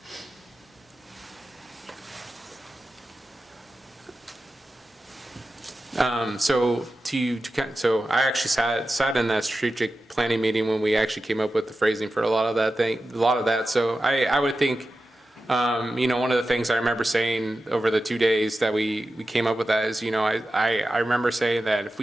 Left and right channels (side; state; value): both; normal; correlation 0.92